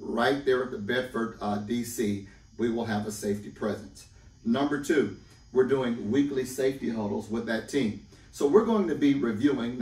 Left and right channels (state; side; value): identical; both; correlation 1.00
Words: there at the Bedford DC, we will have a safety presence. Number two, we're doing weekly safety huddles with that team. So we're going to be reviewing